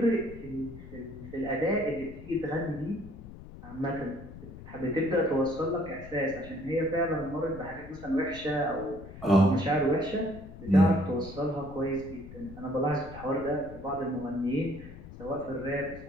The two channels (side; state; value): left; noise; rumble, 15 dB below the sound